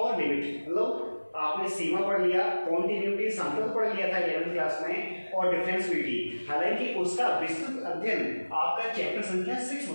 लिमिट, मतलब आपने सीमा पढ़ लिया, कॉन्टिन्यूटी सांतत्य पढ़ लिया था 11वीं क्लास में, और डिफरेंशिएबिलिटी। हालांकि उसका विस्तृत अध्ययन आपका चैप्टर संख्या 6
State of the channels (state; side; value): inverted; both; correlation -1.00